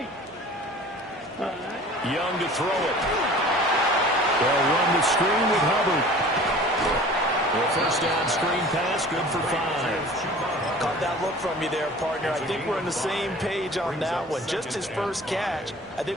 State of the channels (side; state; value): both; normal; correlation 0.44